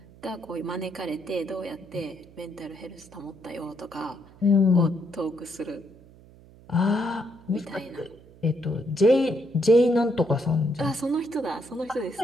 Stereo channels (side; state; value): right; noise; hum, 23 dB below the sound